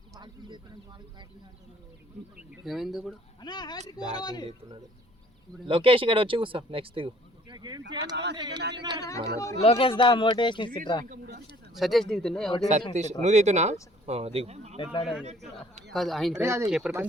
ఏమైంది ఇప్పుడు? బ్యాటింగ్ చేస్తున్నాడు. లోకేష్ ఇక్కడ వచ్చి కూర్చో. నెక్స్ట్ లోకేష్ దా మోటివేషన్ ఇస్తురా. సతీష్ దిగుతుండే. సతీష్ నువ్వు దిగుతున్నా దిగు. కాదు ఆయన పేరు కీపర్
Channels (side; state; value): both; normal; correlation 0.57